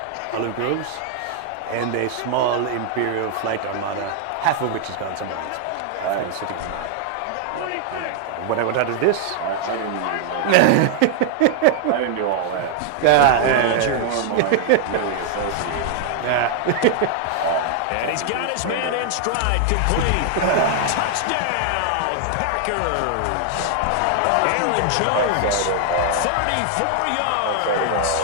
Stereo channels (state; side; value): different; both; correlation 0.00